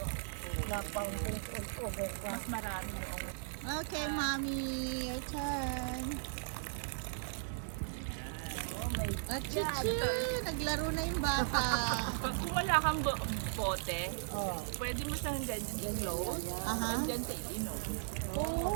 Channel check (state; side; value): silent; left; 53 dB below the other